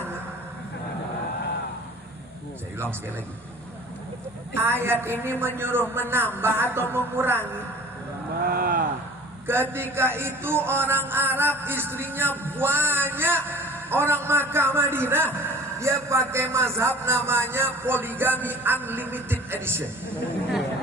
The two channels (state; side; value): normal; both; correlation 0.46